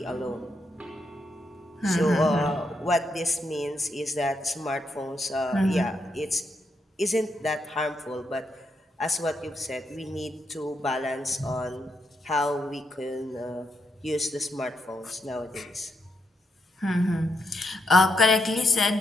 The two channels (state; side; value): normal; both; correlation 0.81